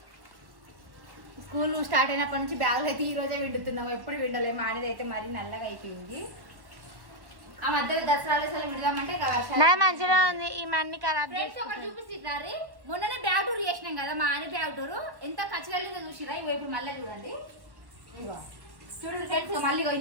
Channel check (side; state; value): left; late; 1.1 ms